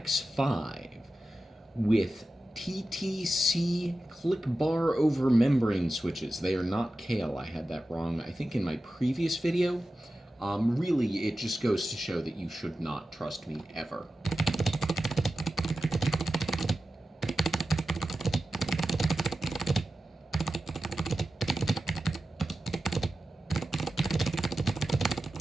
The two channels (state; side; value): normal; both; correlation 0.93